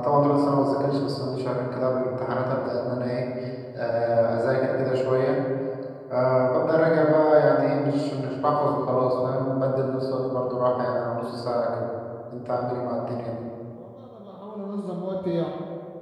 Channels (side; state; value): both; identical; correlation 1.00